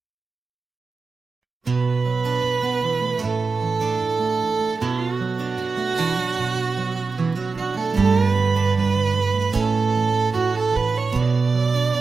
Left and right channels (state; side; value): quieter; left; 4.3 dB